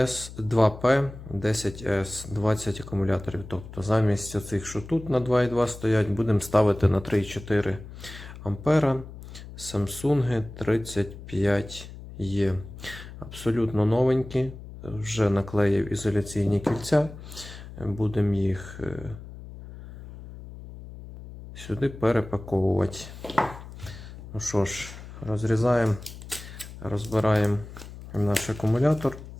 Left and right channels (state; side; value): noise; left; hum, 14 dB below the sound